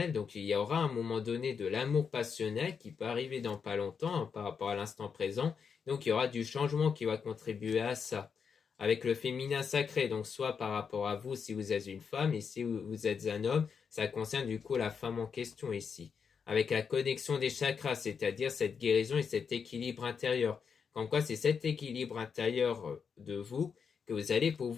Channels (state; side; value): quieter; right; 6.3 dB